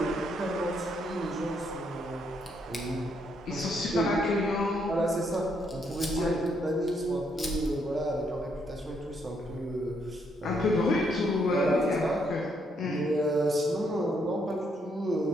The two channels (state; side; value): normal; both; correlation 0.74